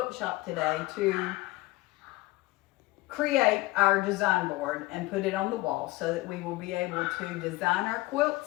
shop today to create our design board and put it on the wall so that we will be able to design our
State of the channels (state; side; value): quieter; right; 20.2 dB